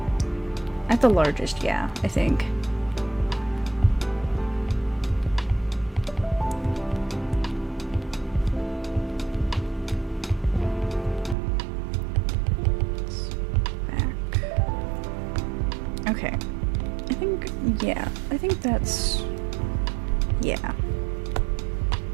at the largest, yeah, I think. Okay, I think that's, yeah.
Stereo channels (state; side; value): drops out; left; at 11.4 s